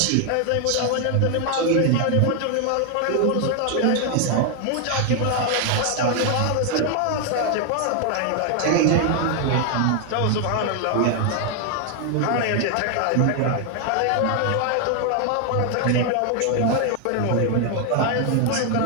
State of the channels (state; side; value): different; both; correlation 0.00